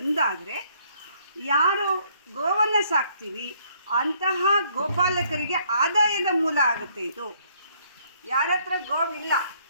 ಯಾರು ಗೋವನ್ನು ಸಾಕ್ತೀವಿ ಅಂತಹ ಗೋಪಾಲಕರಿಗೆ ಆದಾಯದ ಮೂಲ ಆಗುತ್ತೆ ಇದು. ಯಾರ ಹತ್ರ ಗೋವಿಲ್ಲ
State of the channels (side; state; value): both; inverted; correlation -0.66